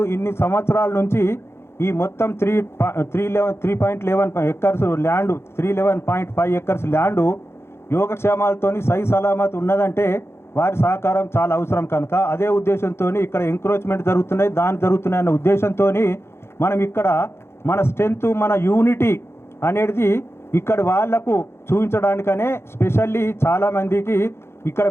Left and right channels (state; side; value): late; right; 0.12 ms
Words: ఇన్ని సంవత్సరాల నుంచి ఈ మొత్తం 3.11 ఎకర్స్ ల్యాండ్ 311.5 ఎకర్స్ ల్యాండు యోగక్షేమాలతోని సై సలామత్ ఉన్నదంటే వారి సహకారం చాలా అవసరం కనుక అదే ఉద్దేశంతో ఇక్కడ ఎంక్రోచ్మెంట్ జరుగుతున్నాయి అన్న ఉద్దేశంతో మనం ఇక్కడ మన స్ట్రెంత్ మన యూనిటీ అనేది ఇక్కడ వాళ్లకు చూపించడానికనే స్పెషల్లీ చాలామందికి ఇక్కడ